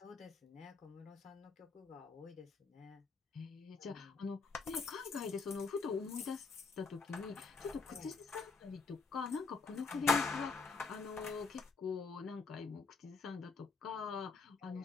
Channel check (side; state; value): right; quieter; 4.5 dB